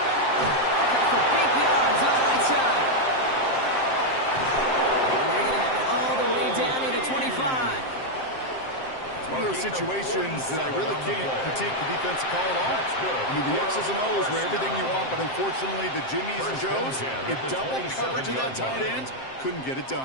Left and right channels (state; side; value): late; right; 7.6 ms